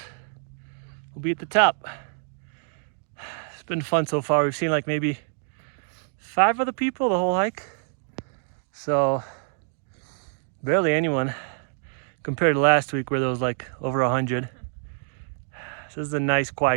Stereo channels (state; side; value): silent; left; 61 dB below the other